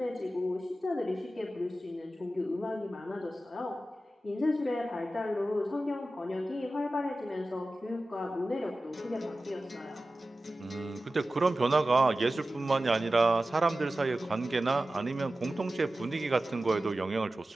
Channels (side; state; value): both; normal; correlation 0.95